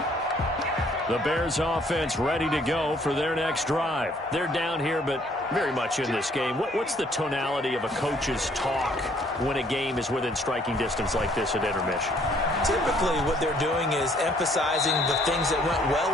The Bears offense ready to go for their next drive. They're down here, but very much in this game. What's the tonality of a coach's talk when a game is within striking distance like this at intermission? Typically, what they're doing is emphasizing the things that went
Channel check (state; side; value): normal; both; correlation 0.63